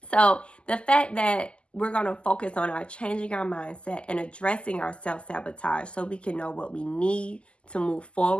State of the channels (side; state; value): right; late; 0.052 ms